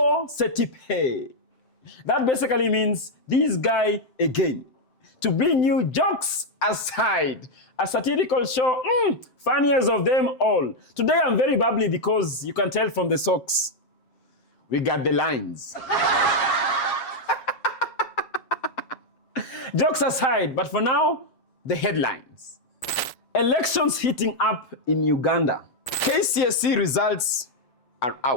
se tipe. That basically means this guy again. To bring you jokes aside, a satirical show, funniest of them all. Today I'm very bubbly because you can tell from the socks. We got the lines. Jokes aside, but for now, the headlines. Elections heating up in Uganda. KCSC results are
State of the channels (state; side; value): late; right; 7.8 ms